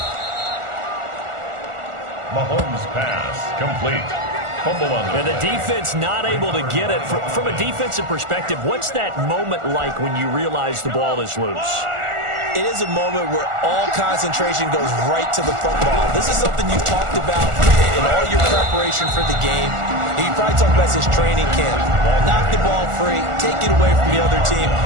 Mahomes' pass complete. Fumble on the And the defense not able to get it. From a defensive perspective, what's that moment like when you realize the ball is loose? It is a moment where all concentration goes right to the football. This is something you've talked about in all your preparation for the game. You probably talked about this training camp. Knock the ball free, take it away from the other team,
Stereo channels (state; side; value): late; left; 1.4 ms